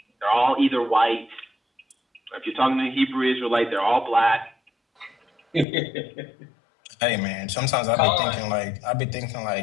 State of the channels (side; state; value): right; drops out; at 5.7 s